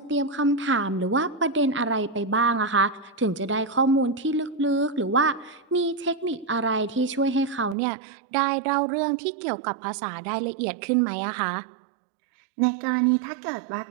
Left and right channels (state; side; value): drops out; left; at 7.8 s